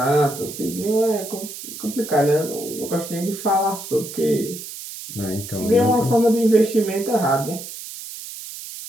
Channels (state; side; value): noise; right; hiss, 11 dB below the sound